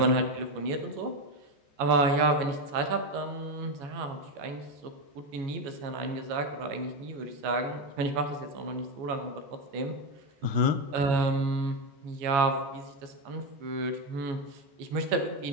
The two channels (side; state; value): left; late; 14 ms